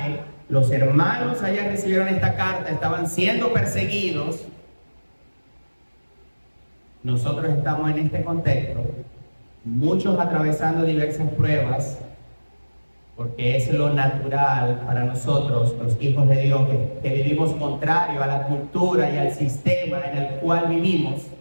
los hermanos allá recibieron esta carta, estaban siendo perseguidos. Nosotros estamos en este contexto, muchos atravesando diversas pruebas, porque es lo natural para nosotros, los hijos de Dios, que vivimos contrario a la cultura y al sistema en el cual vivimos.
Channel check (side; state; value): both; inverted; correlation -1.00